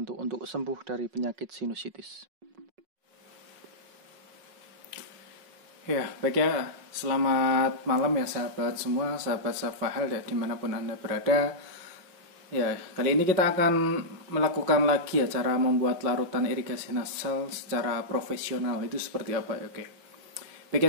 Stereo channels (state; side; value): late; left; 5.4 ms